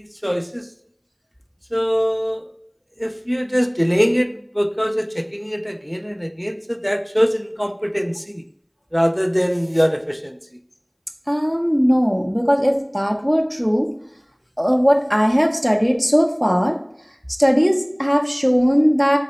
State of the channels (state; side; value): identical; both; correlation 1.00